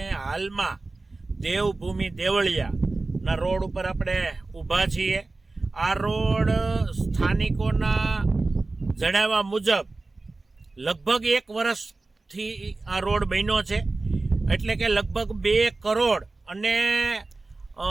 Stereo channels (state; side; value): quieter; left; 3.4 dB